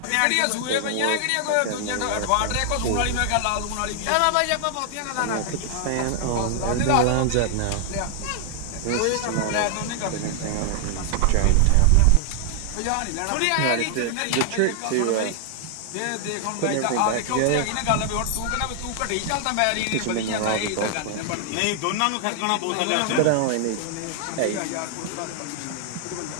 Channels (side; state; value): both; different; correlation 0.00